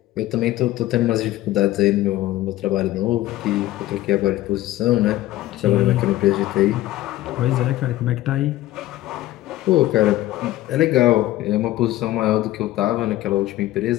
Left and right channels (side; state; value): right; quieter; 15.6 dB